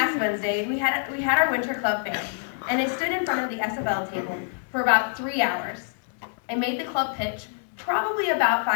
Wednesday, we had our winter club fair, and I stood in front of the SFL table for about 3 hours. I made the club pitch probably about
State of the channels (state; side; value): silent; right; digital silence